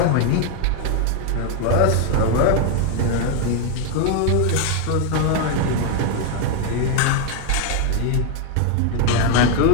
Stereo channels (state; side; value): different; both; correlation 0.01